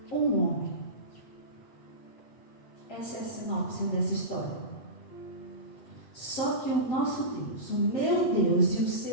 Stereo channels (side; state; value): right; late; 7.9 ms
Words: um homem. Essa é a sinopse dessa história. Só que o nosso Deus, o meu Deus e o